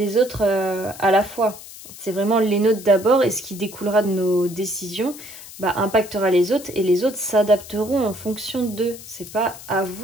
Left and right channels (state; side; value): noise; left; hiss, 16 dB below the sound